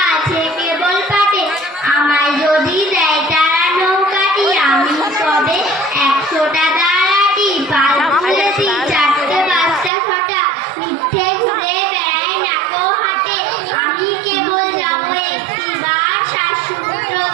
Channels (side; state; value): left; drops out; at 9.9 s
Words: আছে কেবল পাটে। আমায় যদি দেয় তারা নৌকাটি, আমি তবে 100টা দাঁড়াটি। পাল তুলেছি 4টে 5টা 6টা, মিথ্যে ঘুরে বেড়াই নাকো হাটে। আমি কেবল যাবো একটিবার শ্বাসমূত্র